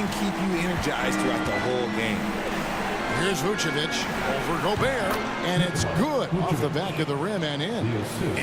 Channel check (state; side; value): identical; both; correlation 1.00